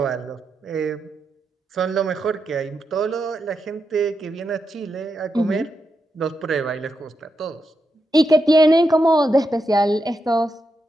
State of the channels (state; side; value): normal; both; correlation 0.85